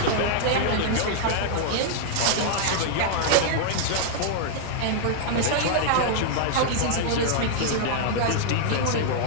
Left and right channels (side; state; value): both; different; correlation -0.01